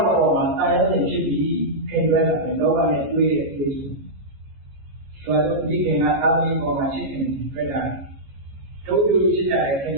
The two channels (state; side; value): late; left; 15 ms